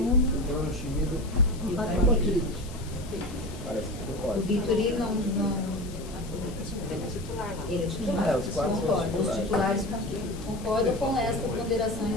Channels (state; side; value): noise; left; hiss, 18 dB below the sound